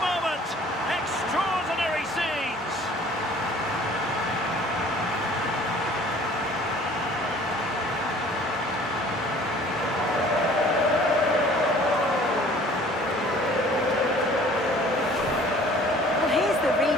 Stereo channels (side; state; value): both; normal; correlation 0.51